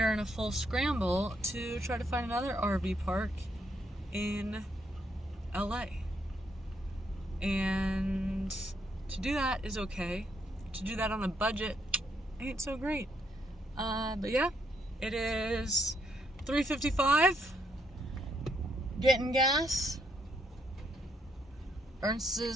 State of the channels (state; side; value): normal; both; correlation 0.74